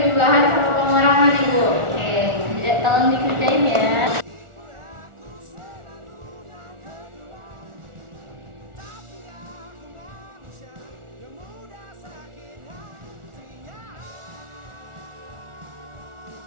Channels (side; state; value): left; late; 1.4 ms